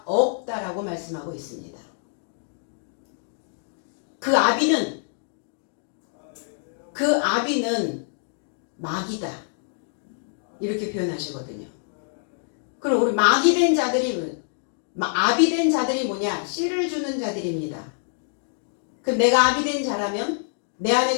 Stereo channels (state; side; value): silent; right; digital silence